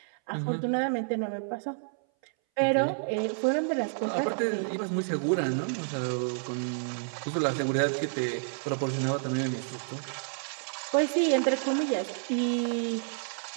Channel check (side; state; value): left; silent; 58 dB below the other